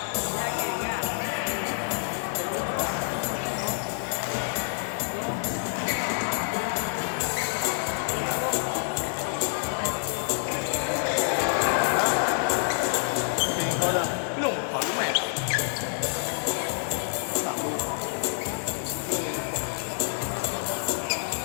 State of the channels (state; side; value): silent; right; digital silence